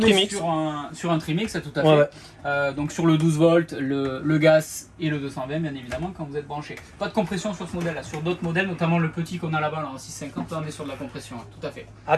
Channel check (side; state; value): both; identical; correlation 1.00